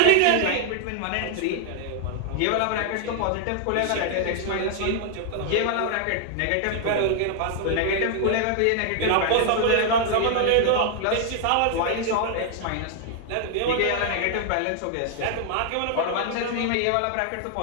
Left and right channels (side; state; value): both; different; correlation 0.00